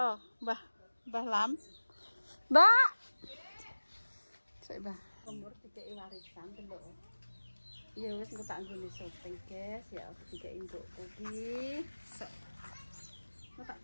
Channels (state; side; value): inverted; both; correlation -1.00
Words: Mbah Lam. Mbak. Sik Mbah. Mbor dikeki warisan delok. Ya wis engko tak nggone syuting guys ya dikeki mbokku ki. Sok. Mau tak